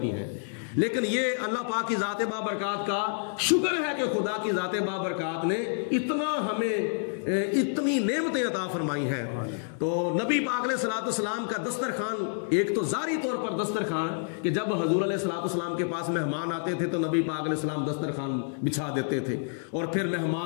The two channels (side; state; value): right; silent; digital silence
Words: ہیں۔ لیکن یہ اللہ پاک کی ذات بابرکات کا شکر ہے کہ خدا کی ذات بابرکات نے اتنا ہمیں اتنی نعمتیں عطا فرمائی ہیں۔ تو نبی پاک علیہ الصلوۃ والسلام کا دسترخوان ایک تو ظاہری طور پر دسترخوان کہ جب حضور علیہ الصلوۃ والسلام کے پاس مہمان آتے تھے تو نبی پاک علیہ السلام دسترخوان بچھا دیتے تھے اور پھر